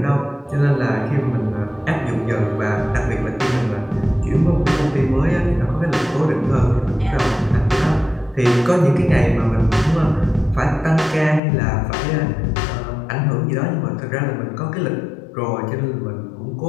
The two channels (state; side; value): drops out; right; at 11.4 s